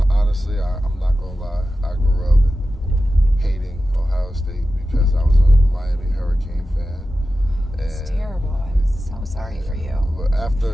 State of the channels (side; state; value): both; normal; correlation 0.93